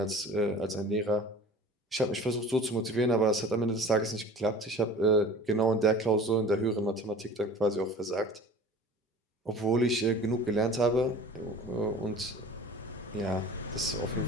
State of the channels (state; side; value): normal; both; correlation 0.41